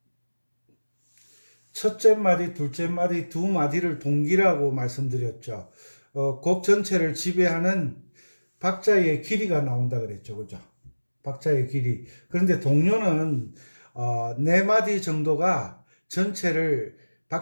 첫째 마디, 둘째 마디, 두 마디를 동기라고 말씀드렸죠. 곡 전체를 지배하는 박자의 길이가 나온다 그랬죠. 그죠? 박자의 길이. 그런데 동요는 네 마디 정도가 전체를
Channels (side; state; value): both; inverted; correlation -1.00